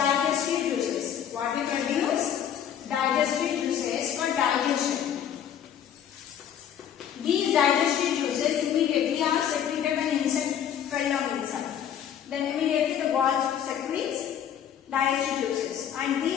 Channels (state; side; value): quieter; right; 9.4 dB